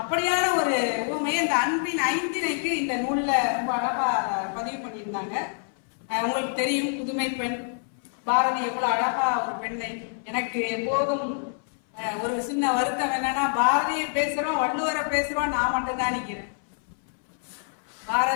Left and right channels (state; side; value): silent; right; 59 dB below the other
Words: ஒரு உண்மையை இந்த அன்பின் ஐந்திணைக்கு இந்த நூல்ல ரொம்ப அழகா பதிவு பண்ணியிருந்தாங்க. உங்களுக்கு தெரியும், புதுமை பெண் பாரதி எவ்வளவு அழகா ஒரு பெண்ணை. எனக்கு எப்போதும் ஒரு சின்ன வருத்தம் என்னன்னா, பாரதியை பேசுறோம் வள்ளுவரை பேசுறோம், நான் மட்டும்தான் நிக்கிறேன்.